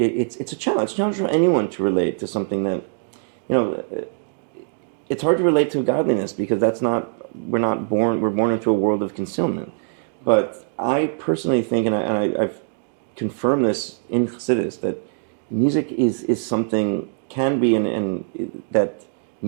a challenge. It's a challenge for anyone to relate to something that it's hard to relate to godliness because we're born into a world of concealment. But I personally think, and I've confirmed this in Chassidus, that music is something, can be, and that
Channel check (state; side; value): silent; left; digital silence